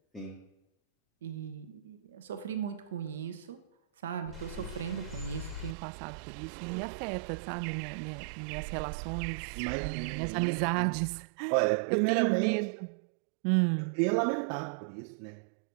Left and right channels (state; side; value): drops out; left; at 5.8 s